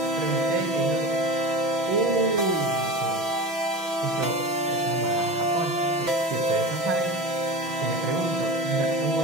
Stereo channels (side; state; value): left; late; 6.0 ms